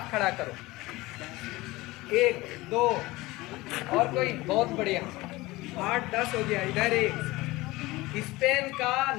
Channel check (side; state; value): right; quieter; 20.3 dB